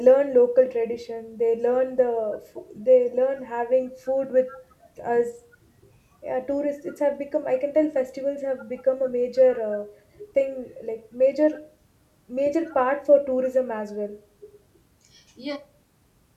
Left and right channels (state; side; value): identical; both; correlation 1.00